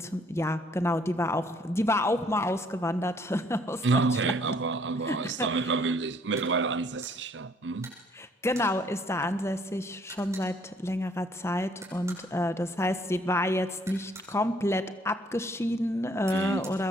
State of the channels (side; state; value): both; normal; correlation 0.64